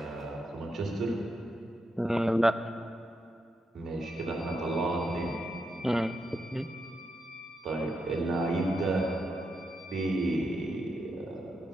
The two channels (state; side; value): normal; both; correlation 0.84